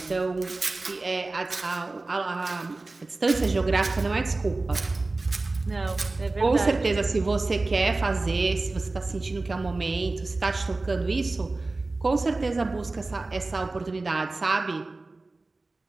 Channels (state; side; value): quieter; left; 3.3 dB